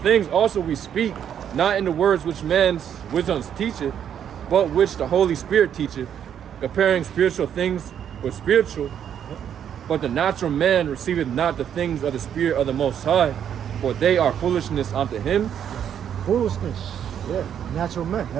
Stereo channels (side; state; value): left; quieter; 9.1 dB